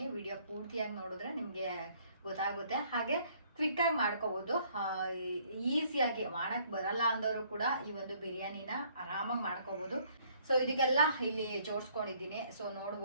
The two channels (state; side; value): inverted; both; correlation -0.63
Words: ವಿಡಿಯೋ ಪೂರ್ತಿಯಾಗಿ ನೋಡಿದ್ರೆ ನಿಮಗೆ ಗೊತ್ತಾಗುತ್ತೆ. ಹಾಗೆ ಕ್ವಿಕ್ಕಾಗಿ ಮಾಡ್ಕೋಬೋದು. ಈಸಿಯಾಗಿ ಮಾಡೋಕ್ಕೆ ಬರಲ್ಲ ಅಂದವರು ಕೂಡ ಈ ಒಂದು ಬಿರಿಯಾನಿನ ಆರಾಮಾಗಿ ಮಾಡ್ಕೋಬೋದು. ಸೊ ಇದಕ್ಕೆಲ್ಲ ಇಲ್ಲಿ ಜೋಡಿಸ್ಕೊಂಡಿದ್ದೀನಿ. ಸೊ